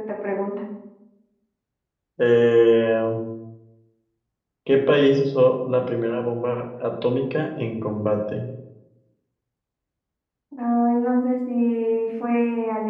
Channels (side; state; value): both; identical; correlation 1.00